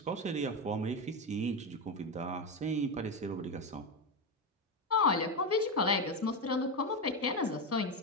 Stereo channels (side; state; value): both; normal; correlation 0.12